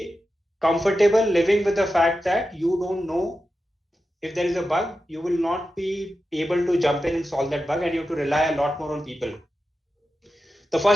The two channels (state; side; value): normal; both; correlation 0.91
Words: comfortable living with the fact that you don't know if there is a bug, you will not be able to jump in and solve that bug, and you have to rely a lot more on people. The